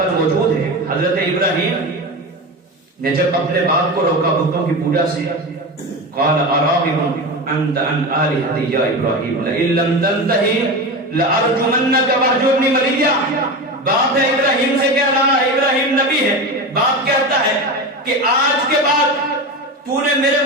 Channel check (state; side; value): normal; both; correlation 0.24